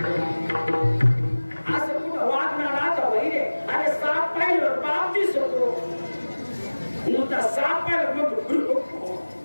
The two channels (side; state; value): both; inverted; correlation -1.00